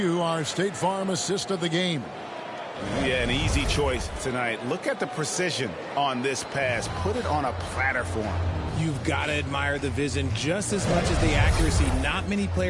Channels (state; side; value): identical; both; correlation 1.00